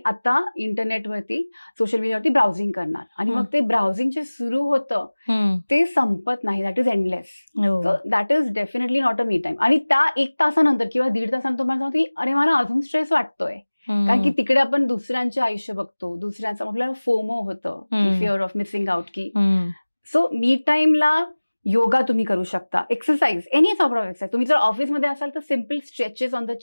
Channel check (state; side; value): inverted; both; correlation -1.00